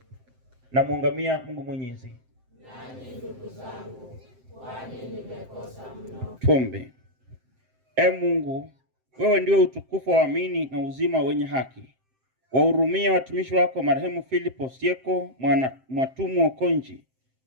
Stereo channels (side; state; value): left; late; 7.7 ms